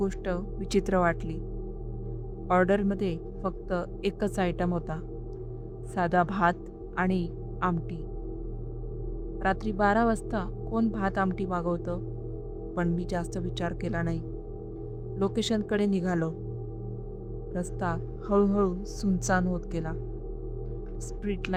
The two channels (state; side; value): identical; both; correlation 1.00